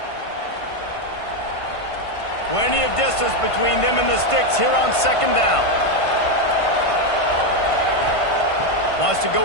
Plenty of distance between them and the sticks here on 2nd down. Wants to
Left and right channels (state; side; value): late; right; 1.5 ms